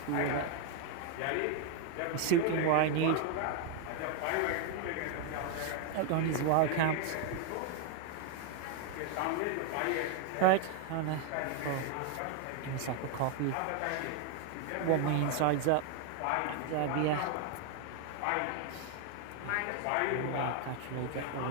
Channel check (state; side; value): different; both; correlation 0.01